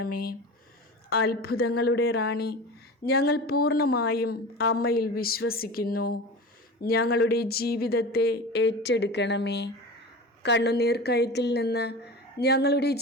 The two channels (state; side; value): normal; both; correlation 0.32